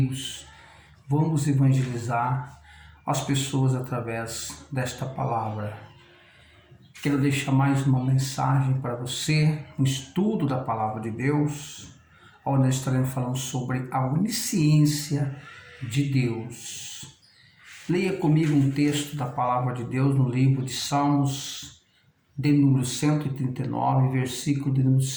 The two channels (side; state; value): both; identical; correlation 1.00